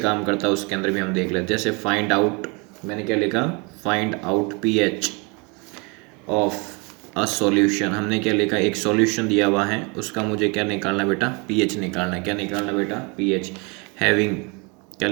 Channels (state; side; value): quieter; left; 30.2 dB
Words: करता है उसके अंदर भी हम देख लेते हैं। जैसे फाइंड आउट, मैंने क्या लिखा find out pH of a solution, हमने क्या लिखा एक सॉल्यूशन दिया हुआ है उसका मुझे क्या निकालना बेटा pH निकालना है। क्या निकालना बेटा pH, हैविंग क्या